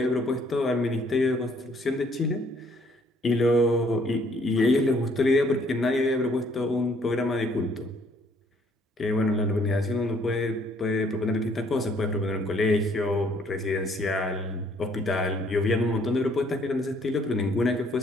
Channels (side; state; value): both; normal; correlation 0.63